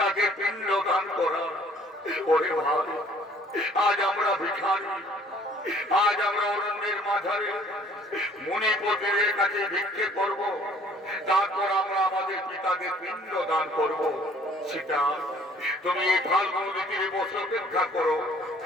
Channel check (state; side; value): normal; both; correlation 0.56